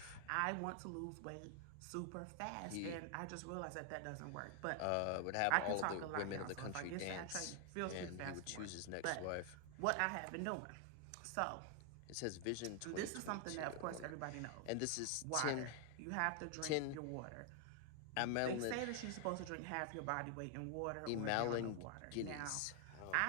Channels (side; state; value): both; different; correlation 0.00